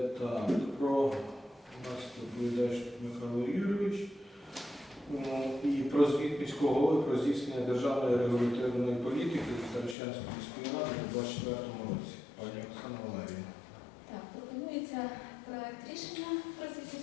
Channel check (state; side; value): drops out; right; at 10.0 s